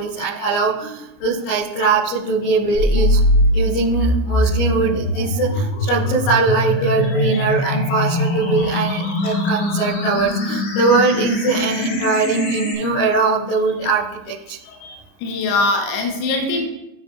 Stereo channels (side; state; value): right; late; 30 ms